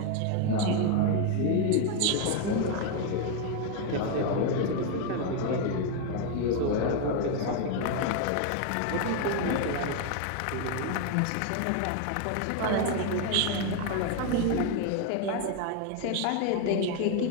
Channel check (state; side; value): different; both; correlation 0.01